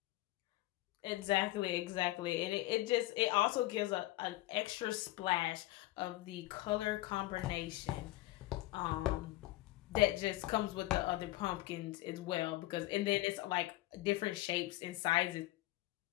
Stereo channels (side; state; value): right; quieter; 17.9 dB